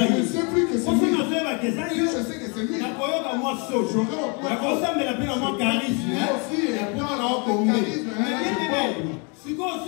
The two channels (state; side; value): quieter; right; 33.7 dB